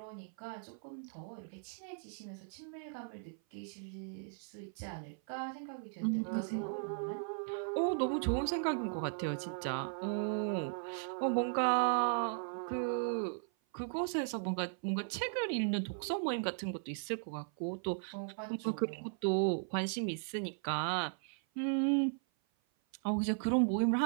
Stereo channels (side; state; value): left; silent; 53 dB below the other